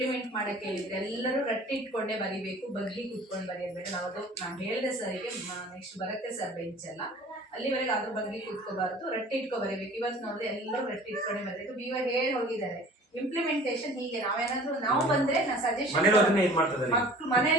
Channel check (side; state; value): both; normal; correlation 0.46